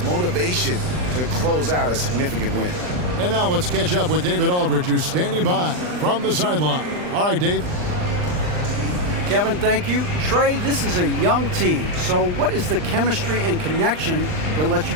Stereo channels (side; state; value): left; late; 39 ms